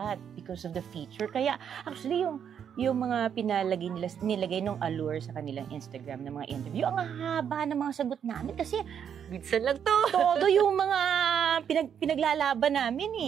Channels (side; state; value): left; quieter; 8.2 dB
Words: because of the feature. Kaya, actually, yung mga nilagay nung allure sa kanilang Instagram ng mga interview, ang haba ng mga sagot namin kasi Minsan lang to. todo yung mga pinaglalaban namin